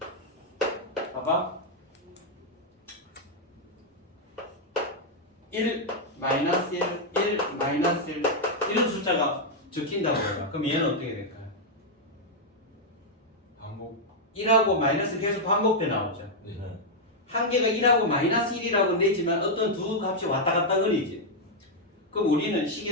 봐봐. 1, 마이너스 1, 1, 마이너스 1 이런 숫자가 적힌다고 해요. 그럼 얘는 어떻게 될까요? 반복. 1하고 마이너스 계속 반복돼 나오죠. 네. 한계가 1하고 마이너스 1이라고 내지만 어떤 두 값이 왔다 갔다 거리지. 그럼 우리는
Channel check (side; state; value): both; normal; correlation -0.02